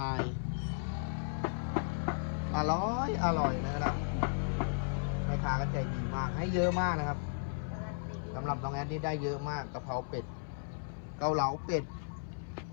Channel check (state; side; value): silent; right; 54 dB below the other